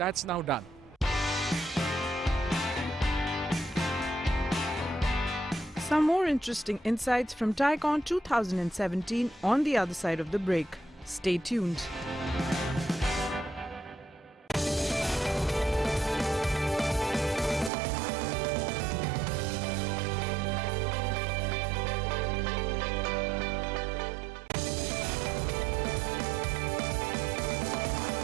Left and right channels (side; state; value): left; drops out; at 17.7 s